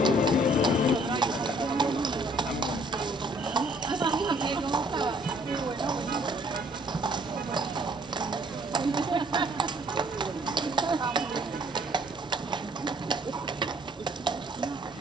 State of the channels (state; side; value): normal; both; correlation 0.61